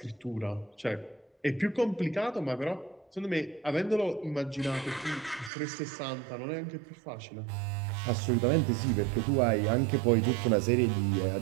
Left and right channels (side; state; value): left; drops out; at 5.5 s